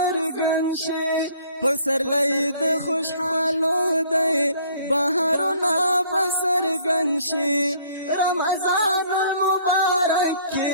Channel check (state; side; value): inverted; both; correlation -0.58